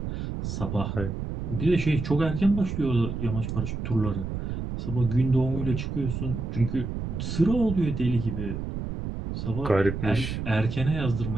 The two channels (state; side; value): noise; right; rumble, 5 dB below the sound